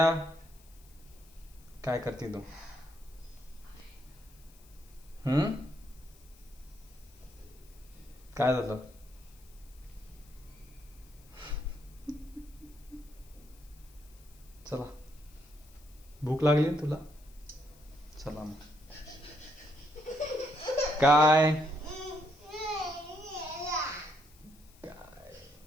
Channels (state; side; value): noise; left; hiss, 26 dB below the sound